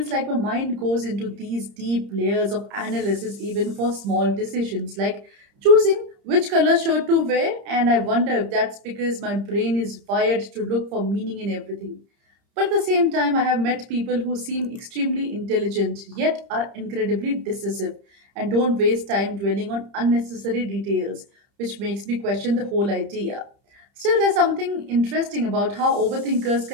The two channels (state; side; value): late; left; 30 ms